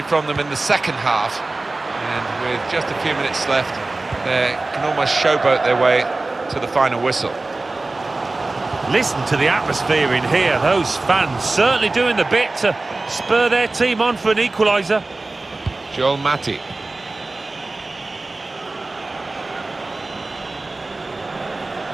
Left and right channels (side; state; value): left; quieter; 3.2 dB